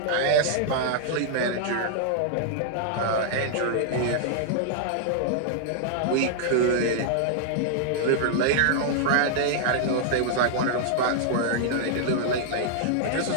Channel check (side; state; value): both; different; correlation -0.01